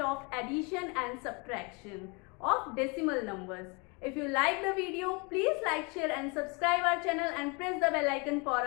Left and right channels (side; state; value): right; quieter; 30.9 dB